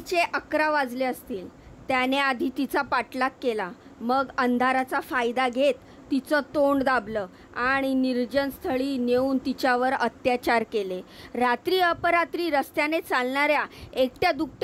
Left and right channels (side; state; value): both; identical; correlation 1.00